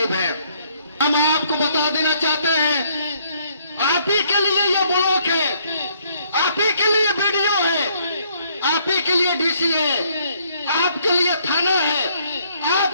हैं? हम आपको बता देना चाहते हैं, आप ही के लिए यह ब्लॉक है, आप ही के लिए वीडियो है, आप ही के लिए डीसी है, आपके लिए थाना है,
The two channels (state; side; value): inverted; both; correlation -0.67